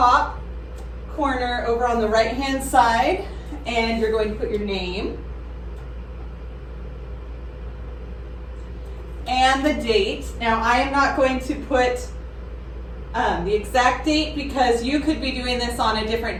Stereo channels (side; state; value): both; identical; correlation 1.00